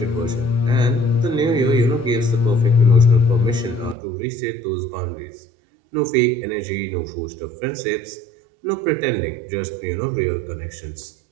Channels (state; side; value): drops out; left; at 4.0 s